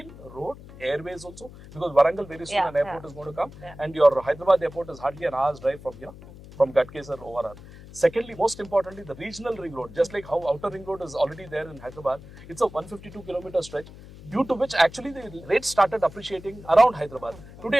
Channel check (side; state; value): left; noise; hum, 17 dB below the sound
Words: road, airways also, because Warangal very soon an airport is going to come and your Hyderabad airport is hardly an hour's drive from here, from Gadkesar ORR. Secondly, most importantly, the regional ring road, just like how outer ring road is already there in Hyderabad, it's a 152 kilometer stretch, due to which actually the rates started appreciating around Hyderabad. Today,